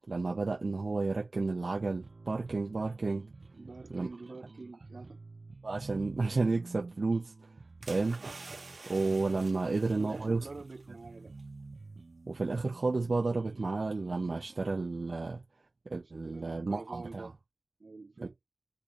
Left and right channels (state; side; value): quieter; left; 3.1 dB